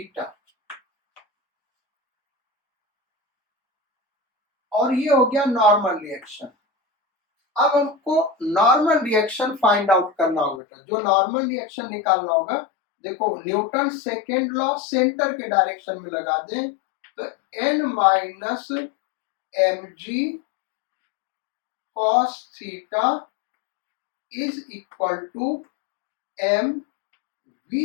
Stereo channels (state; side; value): drops out; right; at 10.6 s